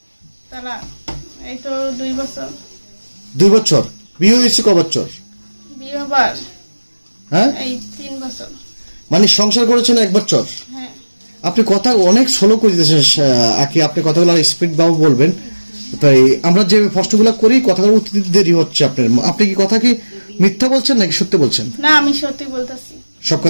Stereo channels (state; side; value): inverted; both; correlation -1.00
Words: তারা এই তো 2 বছর। 2 বছর। বিয়ে হয়েছে ক বছর? বিয়ে হবার হ্যাঁ, এই 3 বছর। মানে সংসার করেছেন 1 বছর। হ্যাঁ। আপনি কথা অনেক স্লো করে দিতেছেন আকি, আপনি কথাগুলো স্পিড বাবু বলবেন। তাই আমরা যে প্রশ্নগুলো করি কথাগুলো উত্তর দিতে দেরি হচ্ছে আপনার। আপনি কি কথা কি মিথ্যা বলছেন নাকি সত্যি বলছেন? না, আমি সত্যি বলতেছি। সব